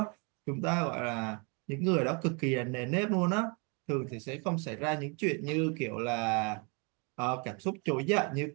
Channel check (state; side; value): quieter; left; 33.4 dB